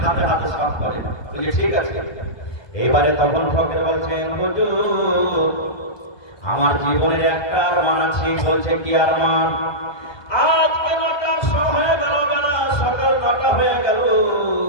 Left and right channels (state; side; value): late; right; 1.2 ms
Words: হাতে হাতে সাফ করে। বলছে, ঠিক আছে। এবারে তখন ফকির বলছেন, হুজুর, আমার জীবনের একটা আরমান আছে। বলছে, কি আরমান? আজকে 9টার সময় হয়ে গেল, বেলা সকাল 9টা হয়ে গেল,